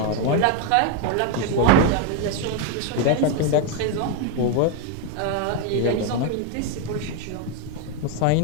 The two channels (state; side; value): different; both; correlation 0.01